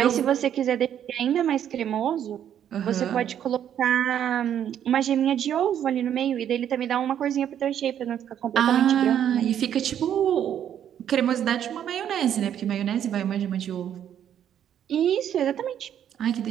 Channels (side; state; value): left; quieter; 9.8 dB